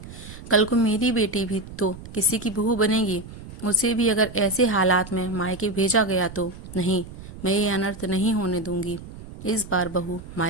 कल को मेरी बेटी भी तो किसी की बहू बनेगी, उसे भी अगर ऐसे हालात में मायके भेजा गया तो नहीं, मैं ये अनर्थ नहीं होने दूंगी। इस बार बहू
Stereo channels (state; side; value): noise; right; rumble, 14 dB below the sound